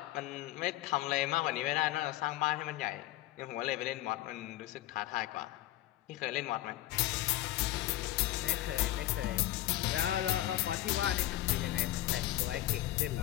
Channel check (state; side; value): quieter; right; 15.3 dB